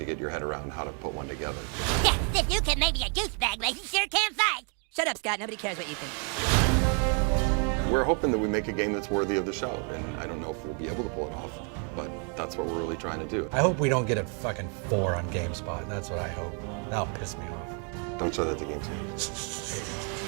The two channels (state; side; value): quieter; left; 39.3 dB